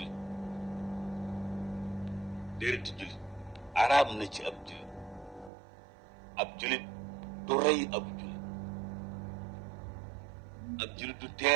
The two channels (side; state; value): left; drops out; at 5.5 s